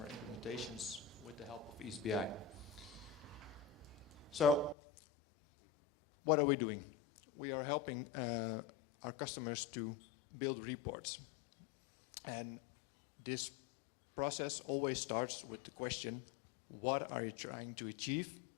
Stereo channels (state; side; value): drops out; right; at 4.8 s